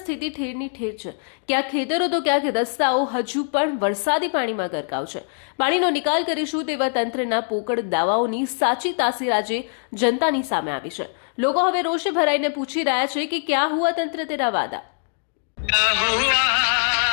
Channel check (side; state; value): right; silent; 64 dB below the other